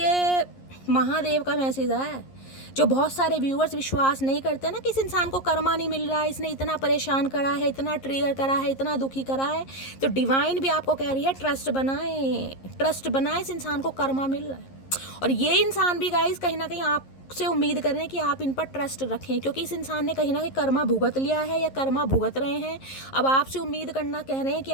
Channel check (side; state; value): right; late; 11 ms